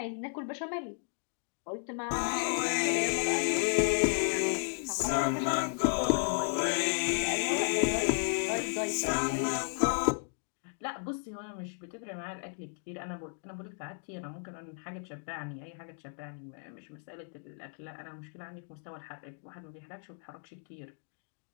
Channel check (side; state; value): right; silent; 55 dB below the other